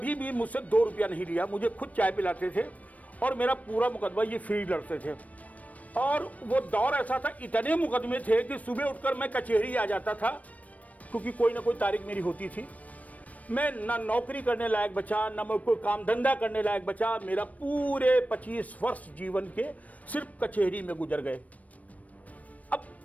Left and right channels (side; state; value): right; late; 0.070 ms